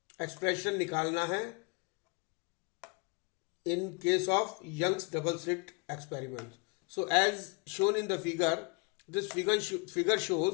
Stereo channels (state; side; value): quieter; right; 31.3 dB